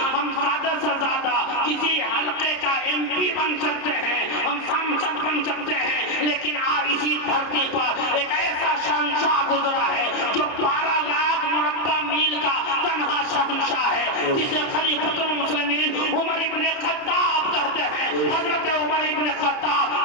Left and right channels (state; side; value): late; right; 30 ms